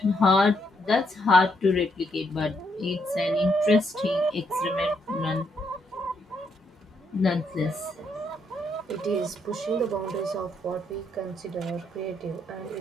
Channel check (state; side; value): normal; both; correlation 0.75